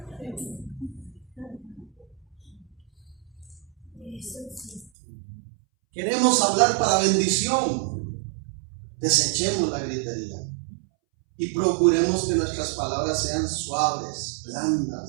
Queremos hablar para bendición. Desechemos la gritería y procuremos que nuestras palabras sean suaves,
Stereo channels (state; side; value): drops out; left; at 4.9 s